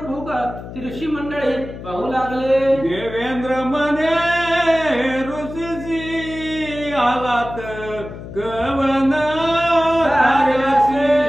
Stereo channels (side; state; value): left; noise; hum, 12 dB below the sound